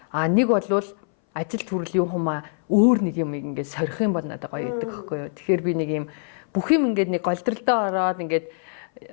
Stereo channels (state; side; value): silent; right; 60 dB below the other